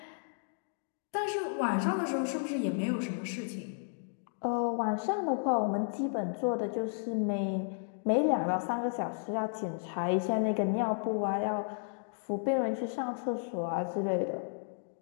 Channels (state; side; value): silent; right; digital silence